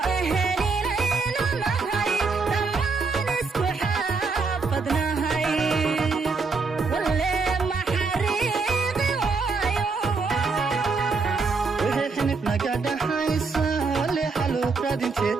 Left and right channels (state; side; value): quieter; left; 4.4 dB